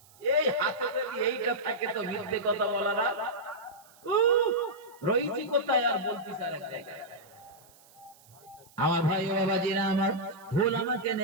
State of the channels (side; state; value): right; noise; hiss, 27 dB below the sound